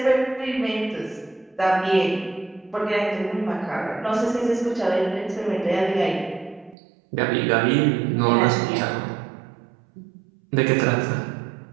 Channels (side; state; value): left; drops out; at 6.8 s